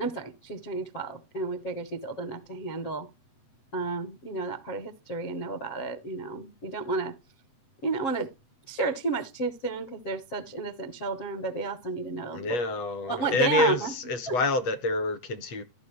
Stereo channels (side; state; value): right; late; 8.0 ms